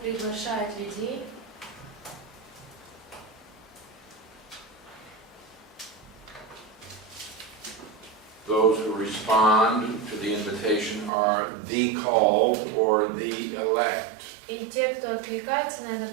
приглашает людей. Those who respond to the invitation are the called or the elect. И те, кто откликается на это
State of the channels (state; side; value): drops out; left; at 11.1 s